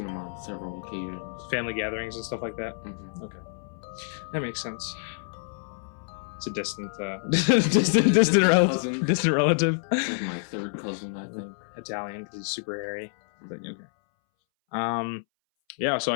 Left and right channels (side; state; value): right; silent; 60 dB below the other